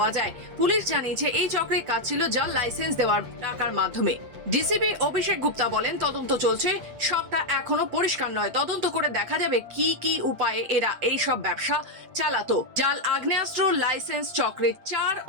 যায়। পুলিশ জানিয়েছে এই চক্রের কাজ ছিল জাল লাইসেন্স দেওয়ার টাকার মাধ্যমে। ডিসিপি অভিষেক গুপ্তা বলেন, তদন্ত চলছে, সবটা এখনো পরিষ্কার নয়। তদন্ত করে দেখা যাবে কি কি উপায়ে এরা এই সব ব্যবসা চালাতো। জাল আগ্নেয়াস্ত্র লাইসেন্স চক্রের 4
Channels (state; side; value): late; left; 8.2 ms